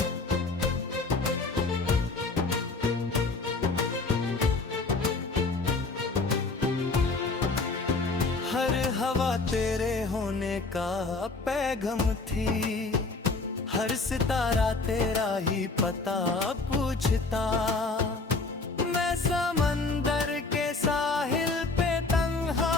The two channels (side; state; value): right; quieter; 3.7 dB